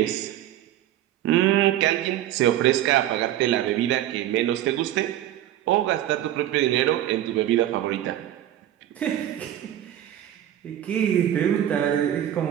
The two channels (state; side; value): quieter; left; 12.3 dB